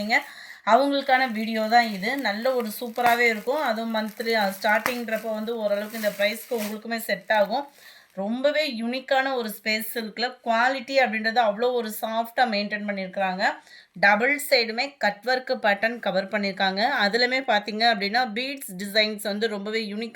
அவங்களுக்கான வீடியோ தான் இது. நல்ல ஒரு சூப்பராகவே இருக்கும். அதுவும் மந்த்லி ஸ்டார்டிங்கிறப்போ வந்து ஓரளவுக்கு இந்த ப்ரைஸ்க்கு உங்களுக்குமே செட் ஆகும். ரொம்பவே யூனிக்கான ஒரு ஸ்பேஸ் சில்கில் குவாலிட்டி அப்படின்றது அவ்வளோ ஒரு சாஃப்டாக மெயின்டைன் பண்ணியிருக்கிறாங்க. டபுள் சைடுமே கட் ஒர்க்கு பேட்டர்ன் கவர் பண்ணியிருக்காங்க. அதுலேயுமே பார்த்தீங்க அப்படின்னா பீட்ஸ் டிசைன்ஸ் வந்து ரொம்பவே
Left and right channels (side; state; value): both; identical; correlation 1.00